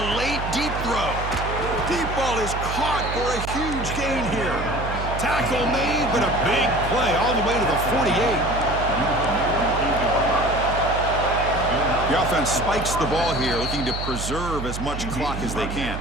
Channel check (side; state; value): right; noise; hum, 6 dB below the sound